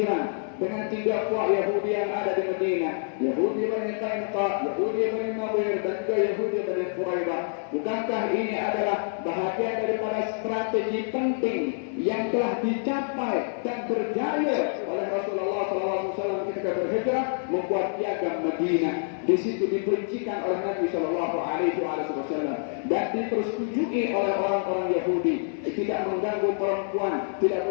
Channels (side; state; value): right; silent; 56 dB below the other